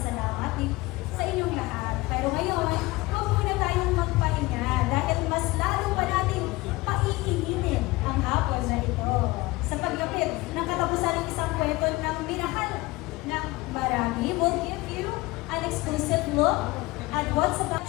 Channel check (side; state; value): right; quieter; 21.2 dB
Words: sa inyong lahat. Pero ngayon, huwag muna tayong magpahinga dahil mas lalo pa natin paiinitin ang hapon na ito sa paglapit ng katapusan ng isang kwento ng minahal ng marami. We'll give you an exclusive look at what's about